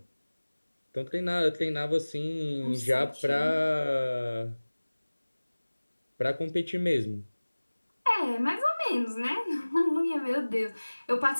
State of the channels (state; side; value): inverted; both; correlation -1.00